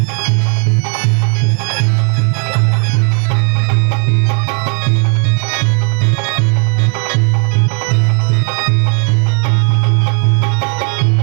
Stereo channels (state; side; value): quieter; left; 39.1 dB